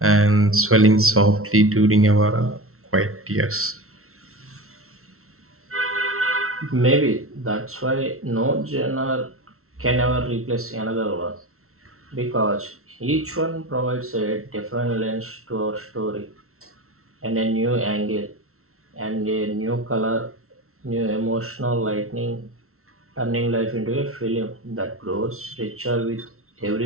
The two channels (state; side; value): late; left; 0.63 ms